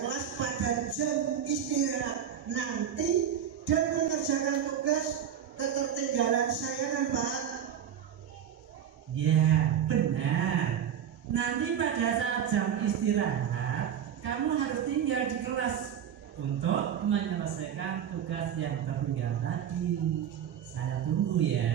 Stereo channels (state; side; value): quieter; left; 9.0 dB